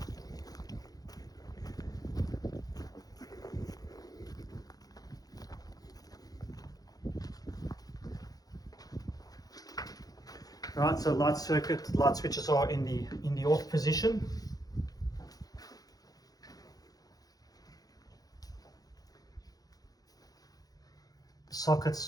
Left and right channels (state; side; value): late; right; 0.18 ms